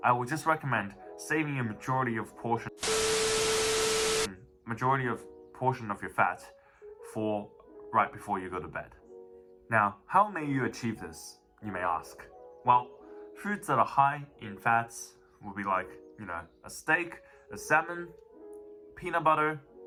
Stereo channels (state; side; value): identical; both; correlation 1.00